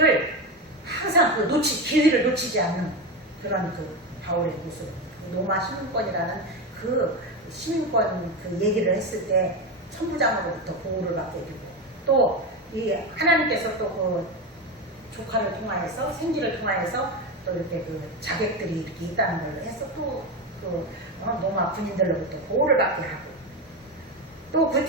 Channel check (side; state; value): both; normal; correlation 0.17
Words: 항상 기회를 놓치지 않는 그런 바울의 모습. 로마 시민권이라는 시민권 얘기를 했을 때 천부장으로부터 보호를 받게 되고 또 이 하나님께서 또 조카를 통하여서 생기를 통하여서 또 이렇게 자객들이 이렇게 있다는 걸 해서 또 로마 군인들로부터 보호를 받게 하고 또 그